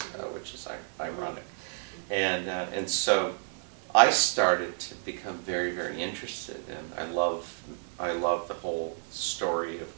which is ironic. And so I started to become very, very interested, and I love the whole story of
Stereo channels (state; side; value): silent; left; 57 dB below the other